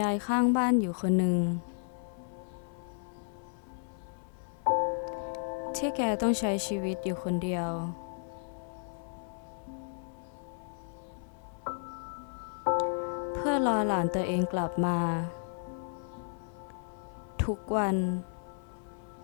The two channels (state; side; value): silent; right; 56 dB below the other